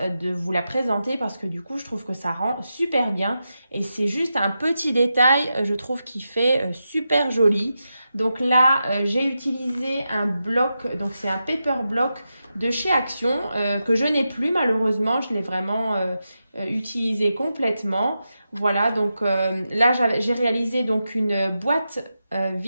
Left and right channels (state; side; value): inverted; both; correlation -0.89